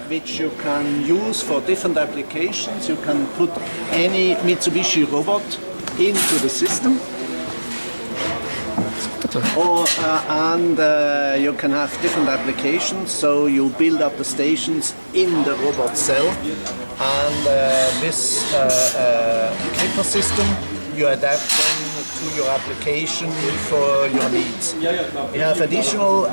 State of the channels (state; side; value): inverted; both; correlation -1.00